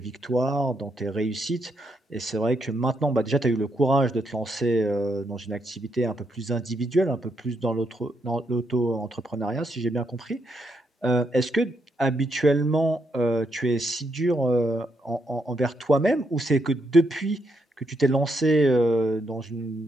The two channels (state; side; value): normal; both; correlation 0.78